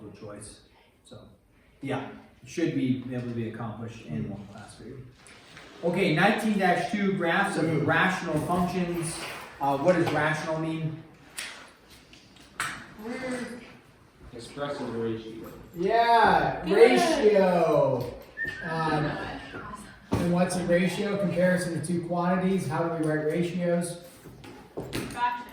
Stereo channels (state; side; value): identical; both; correlation 1.00